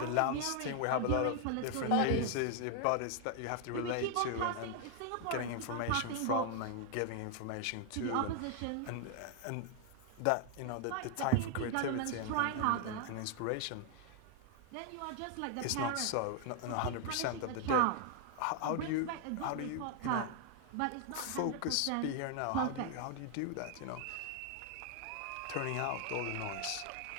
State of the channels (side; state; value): both; different; correlation 0.00